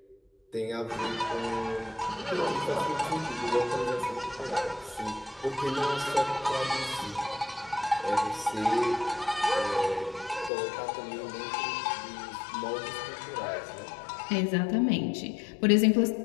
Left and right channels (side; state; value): right; drops out; at 10.5 s